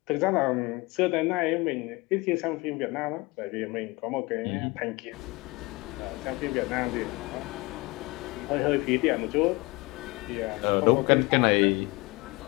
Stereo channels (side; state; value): right; quieter; 24.1 dB